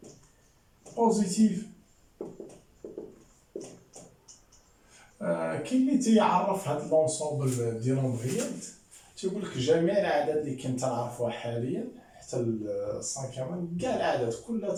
بوزيتيف كاين اللي تيعرف هاد لونسومبل ديال نومبريال تيقول لك جميع الاعداد اللي كنت نعرفوها حاليا حتى السانكيام كاع الاعداد كلها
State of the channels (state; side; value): identical; both; correlation 1.00